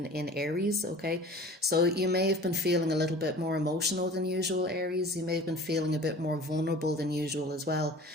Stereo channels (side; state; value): both; normal; correlation 0.43